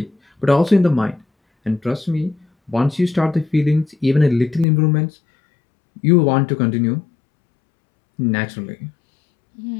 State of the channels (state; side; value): drops out; right; at 4.7 s